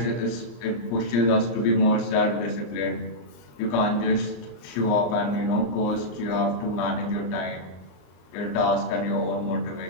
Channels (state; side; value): late; right; 34 ms